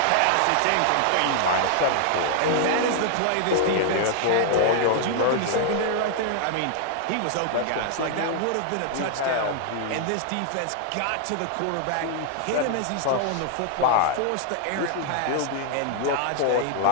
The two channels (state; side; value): different; both; correlation -0.01